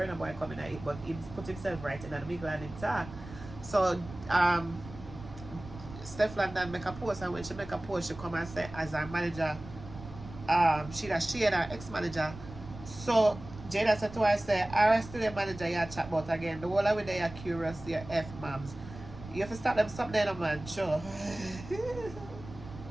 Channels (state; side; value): noise; right; rumble, 14 dB below the sound